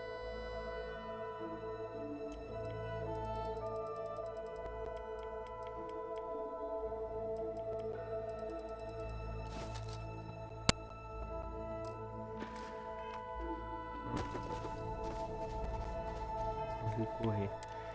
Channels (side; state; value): both; identical; correlation 1.00